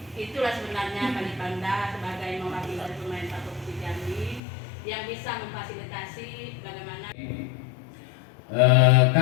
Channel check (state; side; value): drops out; right; at 4.4 s